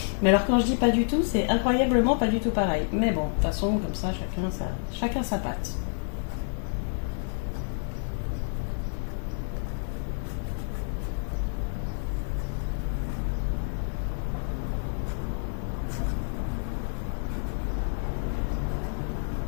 Mais alors quand je dis pas du tout, c'est incroyablement pas du tout pareil. Mais bon, de toute façon, comme ça, chacun sa patte.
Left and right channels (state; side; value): silent; right; 59 dB below the other